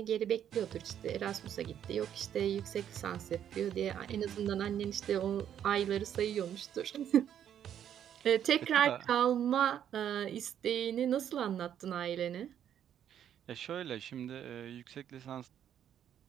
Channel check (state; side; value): quieter; left; 9.8 dB